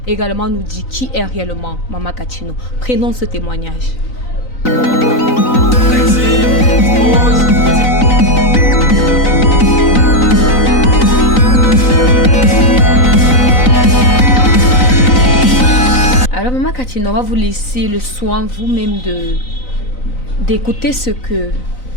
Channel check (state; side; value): late; right; 3.9 ms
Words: également nous dire qui est réellement Mama Katino. Prenons ce témoignage. Alors Mama Katino, on va vous laisser le soin vous-même d'écouter ce que